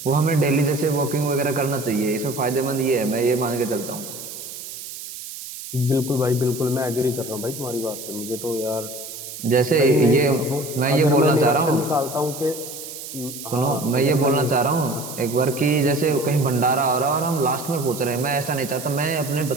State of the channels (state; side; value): noise; right; hiss, 11 dB below the sound